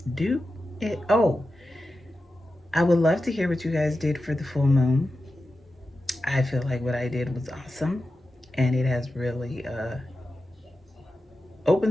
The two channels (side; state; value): both; normal; correlation 0.92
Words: do it. Oh, I would love to hear what you guys did for the full moon. I feel like what I did was awesome, and it has really